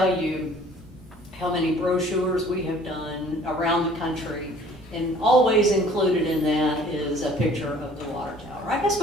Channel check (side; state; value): both; normal; correlation 0.53